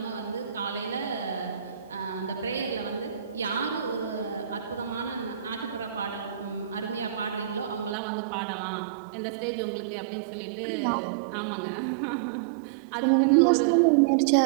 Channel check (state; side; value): drops out; left; at 8.0 s